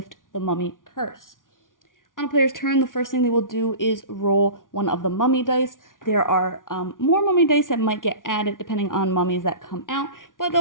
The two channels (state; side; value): late; right; 0.88 ms